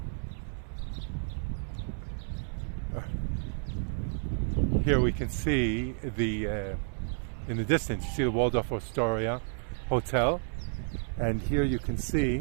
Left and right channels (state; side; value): silent; left; 57 dB below the other